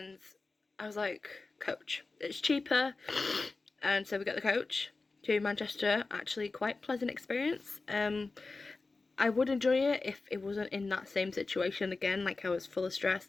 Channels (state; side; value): quieter; right; 3.7 dB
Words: I was like, coach, it's cheaper. And so we got the coach to Manchester. Actually, quite pleasant experience. I would enjoy it if it wasn't in that same situation again, like I was full of